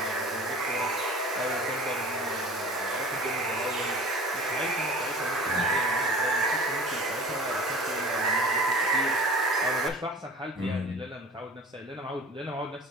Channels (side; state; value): both; normal; correlation 0.41